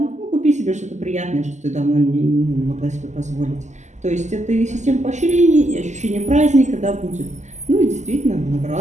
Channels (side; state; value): left; late; 0.34 ms